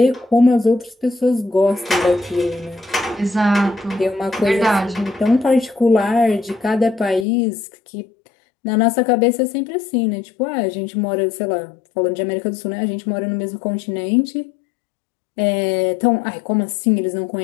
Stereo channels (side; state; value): right; drops out; at 7.2 s